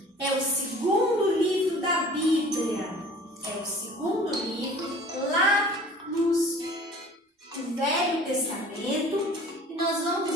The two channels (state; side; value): normal; both; correlation 0.47